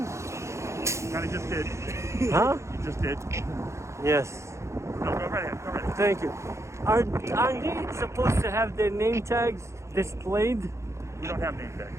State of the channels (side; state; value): left; late; 0.14 ms